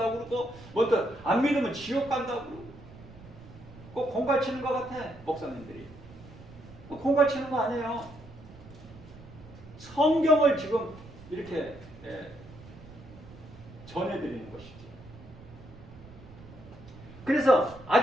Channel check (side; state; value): right; noise; rumble, 19 dB below the sound